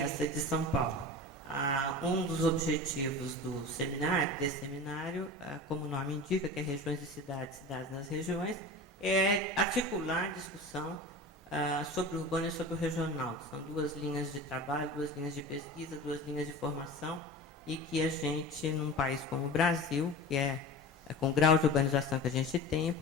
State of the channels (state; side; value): normal; both; correlation 0.33